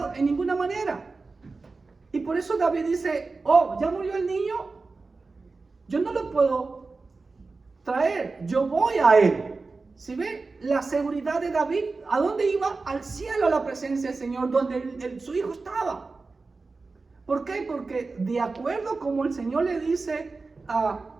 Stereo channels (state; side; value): quieter; left; 3.9 dB